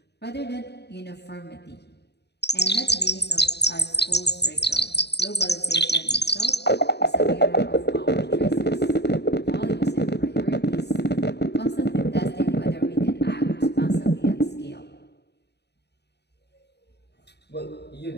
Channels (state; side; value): late; right; 0.49 ms